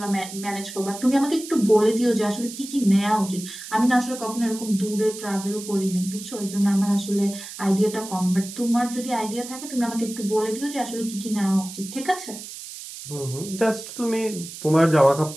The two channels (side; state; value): right; noise; hiss, 12 dB below the sound